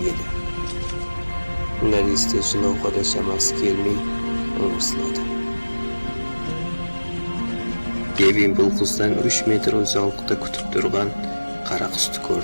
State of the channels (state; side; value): inverted; both; correlation -1.00